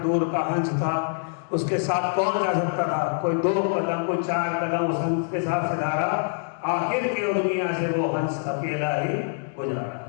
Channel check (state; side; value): silent; right; digital silence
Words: का हंस था, उसके साथ कौन जा सकता था? कोई 2 कदम, कोई 4 कदम उस हंस के साथ से धारा। आखिर की दुनिया से वो हंस अकेला ही गुजारा।